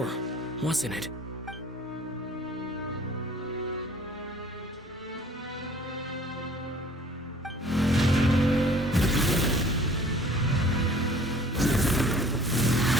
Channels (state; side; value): normal; both; correlation 0.52